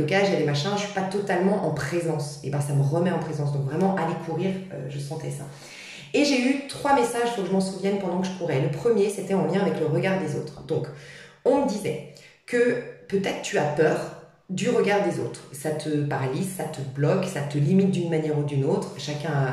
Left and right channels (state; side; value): identical; both; correlation 1.00